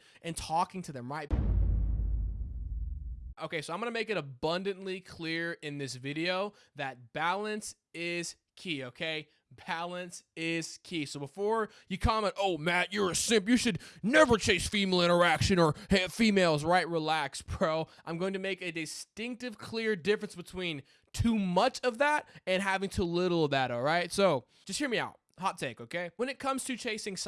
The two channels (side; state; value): both; identical; correlation 1.00